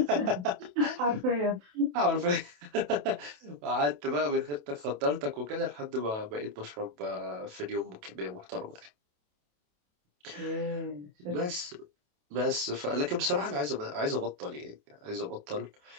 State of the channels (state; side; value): late; left; 28 ms